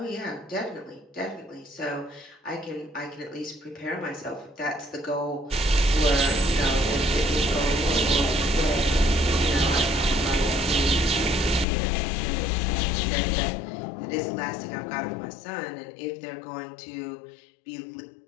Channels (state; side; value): drops out; right; at 11.7 s